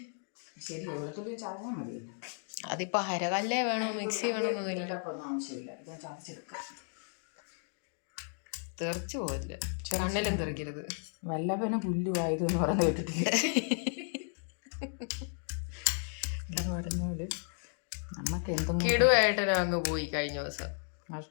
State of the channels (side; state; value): right; silent; 55 dB below the other